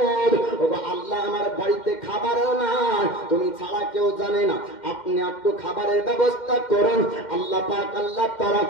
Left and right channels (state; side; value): late; right; 2.1 ms